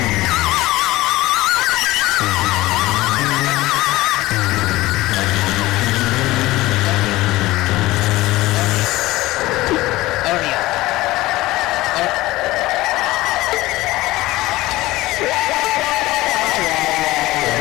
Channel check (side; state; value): right; quieter; 18.3 dB